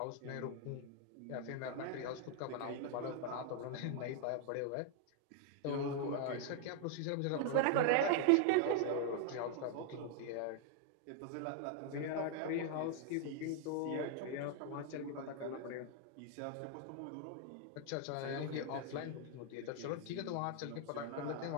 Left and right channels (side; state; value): both; different; correlation 0.00